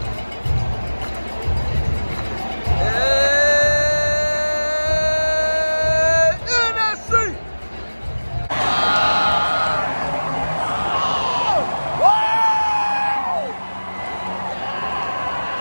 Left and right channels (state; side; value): inverted; both; correlation -1.00